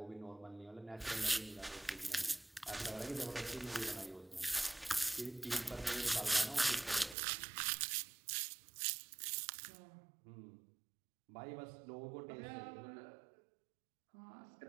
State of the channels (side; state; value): left; drops out; at 7.2 s